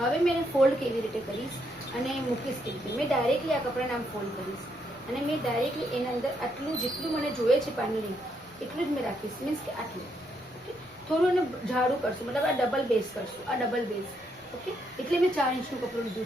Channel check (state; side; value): normal; both; correlation 0.76